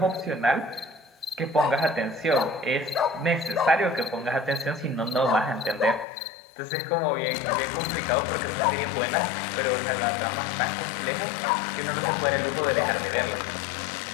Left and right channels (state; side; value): drops out; right; at 6.1 s